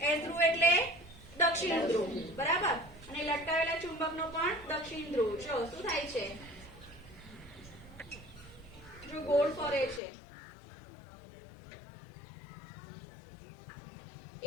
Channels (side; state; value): right; drops out; at 10.0 s